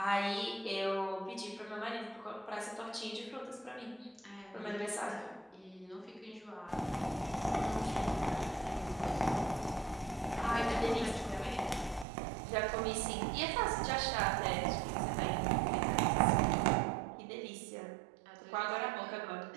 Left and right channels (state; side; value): drops out; left; at 12.1 s